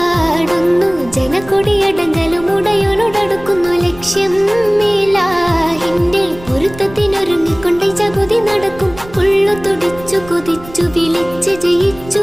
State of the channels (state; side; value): noise; right; rumble, 18 dB below the sound